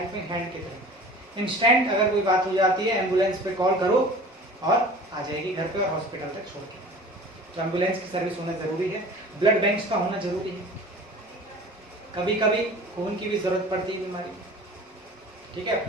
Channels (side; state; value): both; normal; correlation 0.42